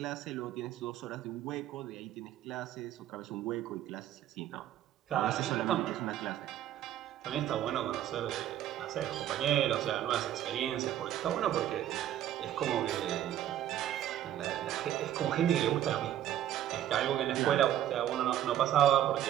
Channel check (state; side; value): quieter; left; 11.8 dB